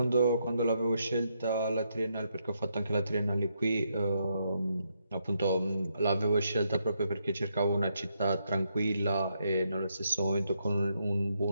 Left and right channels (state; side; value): inverted; both; correlation -0.78